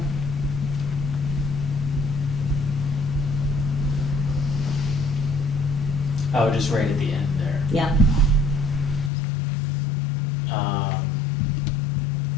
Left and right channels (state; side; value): drops out; right; at 9.1 s